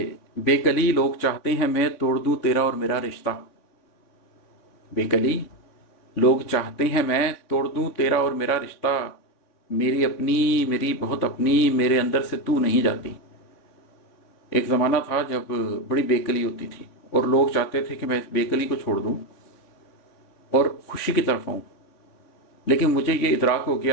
बेकली लोग चाहते हैं मैं तोड़ दूं तेरा और मेरा रिश्ता। बेकली लोग चाहते हैं मैं तोड़ दूं तेरा और मेरा रिश्ता। मेरी अपनी, मेरी बहुत अपनी, मेरे अंदर से तू नहीं जाती। एक ज़माना था जब बड़ी बेकली होती थी और लोग चाहते थे कि मैं इस बेकली को छोड़ दूं और खुशी की तरफ आऊं। लेकिन मुझे ये इदराक हो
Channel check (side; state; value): right; late; 3.6 ms